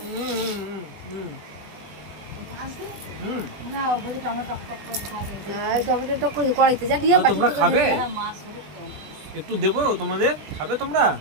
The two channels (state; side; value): late; left; 20 ms